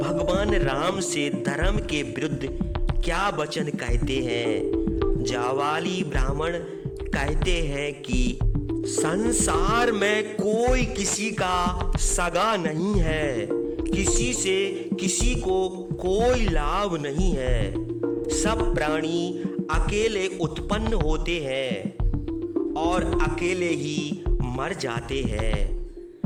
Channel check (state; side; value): identical; both; correlation 1.00